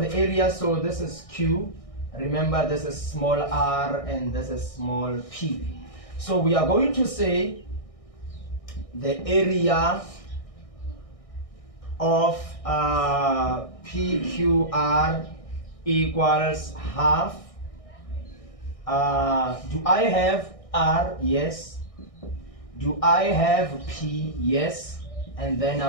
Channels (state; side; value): late; right; 1.6 ms